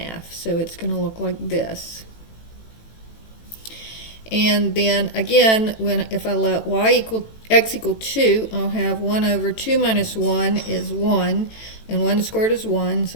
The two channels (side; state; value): right; late; 18 ms